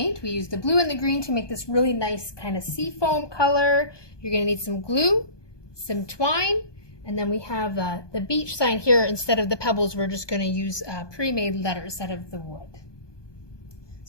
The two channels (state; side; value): late; right; 1.2 ms